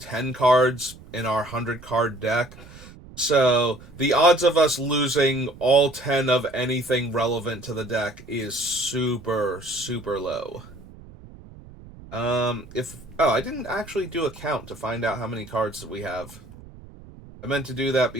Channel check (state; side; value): noise; right; rumble, 19 dB below the sound